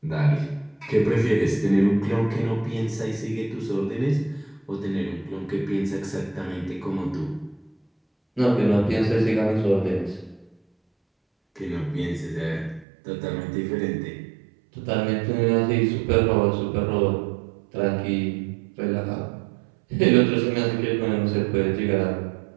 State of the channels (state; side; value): drops out; left; at 12.9 s